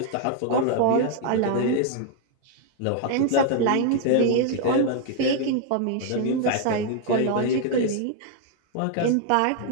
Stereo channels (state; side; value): different; both; correlation 0.00